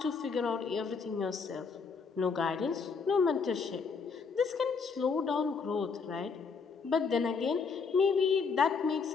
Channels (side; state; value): right; quieter; 5.3 dB